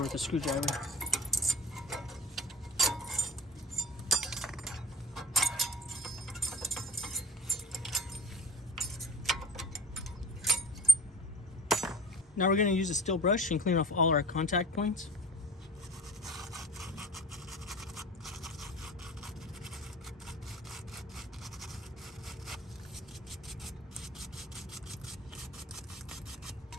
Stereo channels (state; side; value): normal; both; correlation 0.40